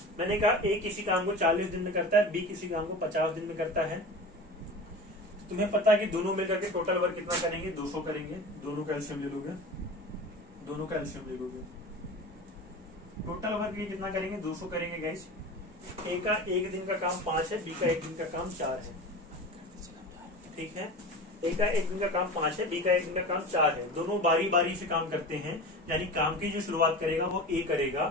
मैंने कहा ए किसी काम को 40 दिन में करता है, बी किसी काम को 50 दिन में करता है। तुम्हें पता है कि दोनों मिलकर के टोटल वर्क कितना करेंगे? 200 करेंगे। दोनों का एलसीएम ले लोगे, दोनों का एलसीएम ले लोगे, टोटल वर्क ये कितना करेंगे? 200 करेंगे गाइस। ए का 1 दिन का काम 5 है, बी का 1 दिन का काम 4 है। ठीक है। ए का 1 दिन का काम 5 है, बी का 1 दिन का काम 4 है। दोनों बारी बारी से काम करते हैं, यानी काम की जो शुरुआत करेगा वो ए करेगा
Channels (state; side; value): normal; both; correlation 0.32